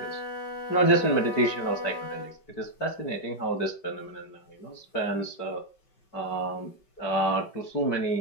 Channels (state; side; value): late; right; 5.2 ms